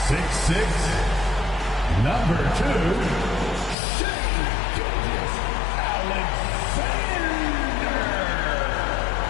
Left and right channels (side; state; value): right; drops out; at 3.8 s